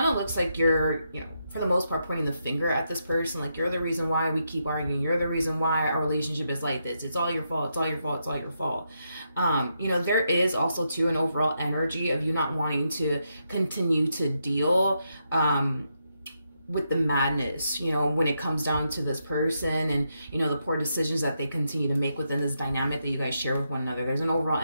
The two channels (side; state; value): both; inverted; correlation -0.82